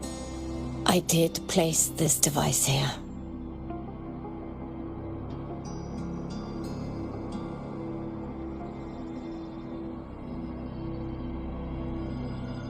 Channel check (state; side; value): identical; both; correlation 1.00